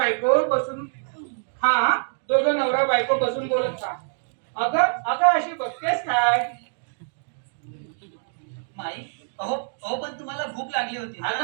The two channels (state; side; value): silent; left; digital silence